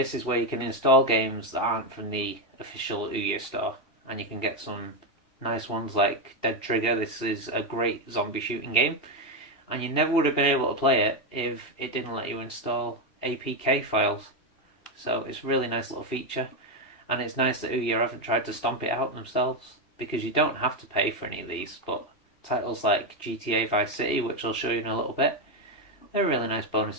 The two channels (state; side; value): late; right; 2.7 ms